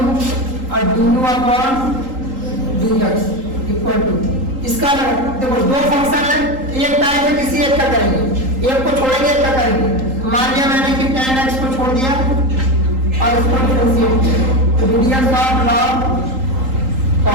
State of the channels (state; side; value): late; left; 3.8 ms